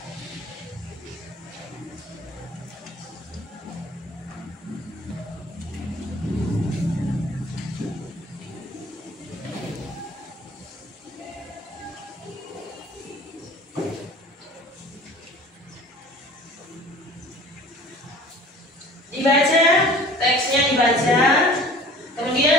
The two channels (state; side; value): normal; both; correlation 0.46